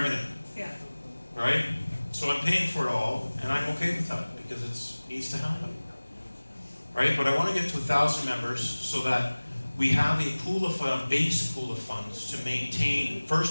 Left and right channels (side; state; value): both; inverted; correlation -1.00